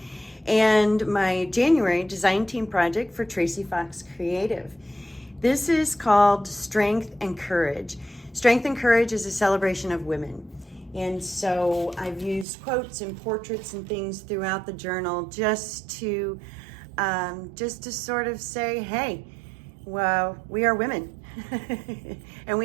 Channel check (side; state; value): left; drops out; at 12.5 s